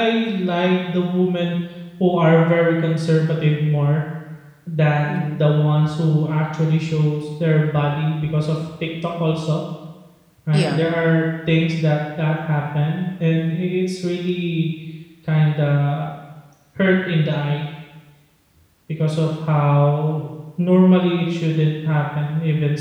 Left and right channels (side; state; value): both; identical; correlation 1.00